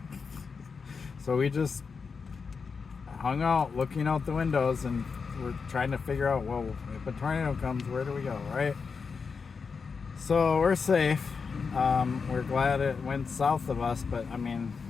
So we just hung out looking out the windows, and we're trying to figure out, well, if a tornado comes, where do we go, right? So we're safe. We're glad it went south of us, but I mean,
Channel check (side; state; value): right; quieter; 5.3 dB